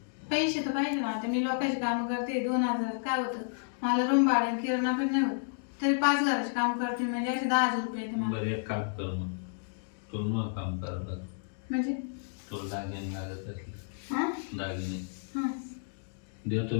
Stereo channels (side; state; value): right; silent; digital silence